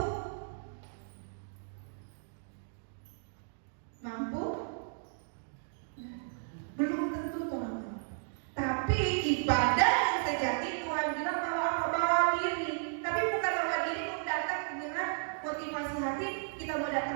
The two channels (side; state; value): left; silent; digital silence